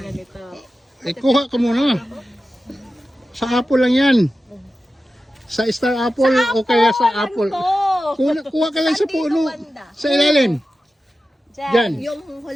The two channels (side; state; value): both; normal; correlation 0.93